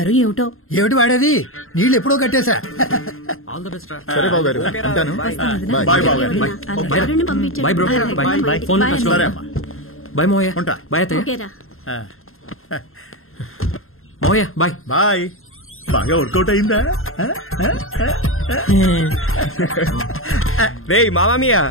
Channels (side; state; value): right; late; 0.61 ms